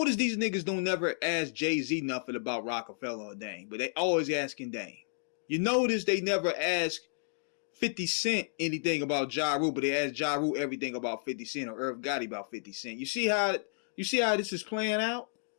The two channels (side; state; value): right; silent; digital silence